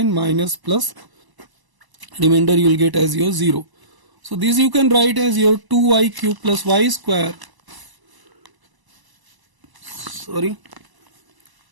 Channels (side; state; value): left; late; 1.0 ms